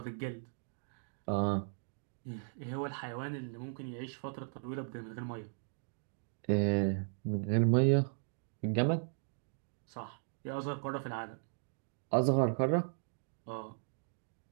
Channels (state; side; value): silent; left; digital silence